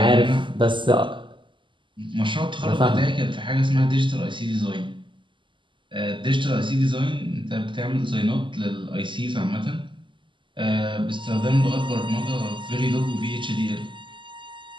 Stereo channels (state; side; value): late; left; 0.24 ms